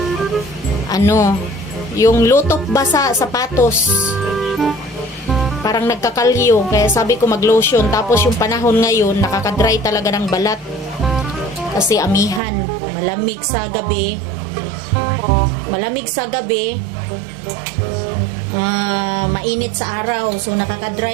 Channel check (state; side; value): drops out; left; at 12.4 s